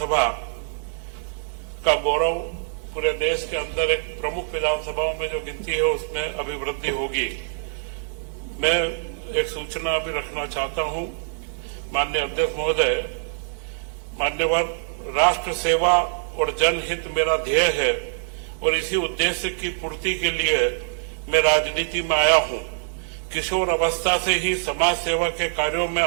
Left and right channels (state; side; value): silent; left; digital silence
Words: का गौरव पूरे देश के अंदर एक प्रमुख विधानसभाओं में जो गिनती है उसमें अभिवृद्धि होगी। मैं एक सूचना भी रखना चाहता हूं। माननीय अध्यक्ष महोदय, मान्यवर, राष्ट्र सेवा और जनहित मेरा ध्येय है और इसी उद्देश्य की पूर्ति के लिए मैं राजनीति में आया हूं। किशोर अवस्था से ही समाज सेवा के कार्यों में